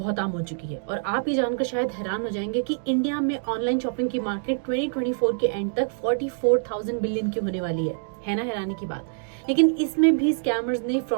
आम हो चुकी है और आप ये जानकर शायद हैरान हो जाएंगे कि इंडिया में ऑनलाइन शॉपिंग की मार्केट 2024 के एंड तक 44,000 बिलियन की होने वाली है ना हैरानी की बात। लेकिन इसमें भी स्कैमर्स ने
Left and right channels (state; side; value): silent; left; digital silence